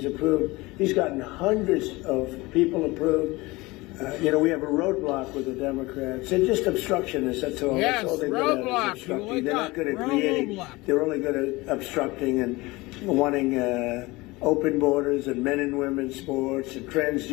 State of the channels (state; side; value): quieter; right; 22.0 dB